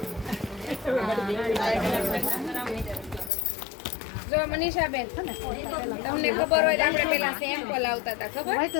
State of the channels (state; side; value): drops out; right; at 3.3 s